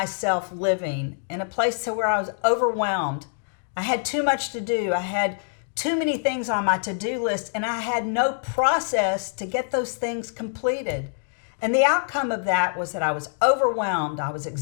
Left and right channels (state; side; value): silent; right; digital silence